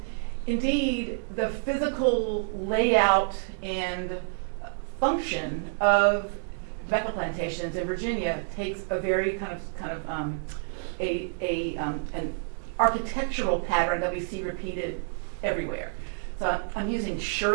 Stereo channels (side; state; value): left; silent; digital silence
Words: indeed, the physical layout and function of tobacco plantations in Virginia takes a very an architectural pattern that we see repeated everywhere. So I'm using